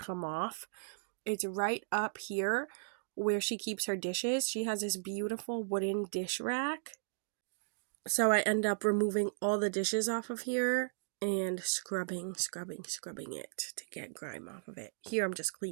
off. It's right up here where she keeps her dishes. She has this beautiful wooden dish rack. So I end up removing all the dishes off of here and scrubbing it to get grime off of it. Here I'm just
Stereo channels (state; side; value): silent; left; digital silence